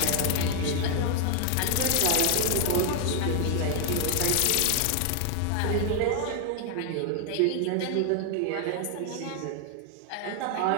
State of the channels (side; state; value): both; different; correlation 0.00